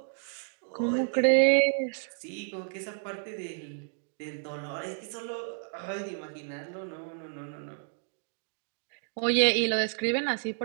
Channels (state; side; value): silent; left; digital silence